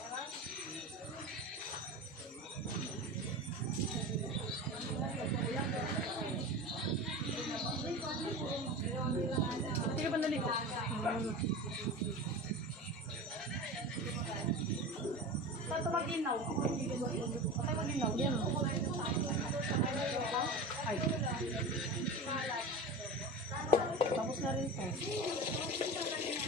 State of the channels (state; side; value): normal; both; correlation 0.29